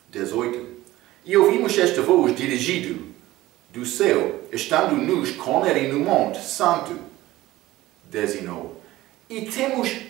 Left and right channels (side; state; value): left; quieter; 16.8 dB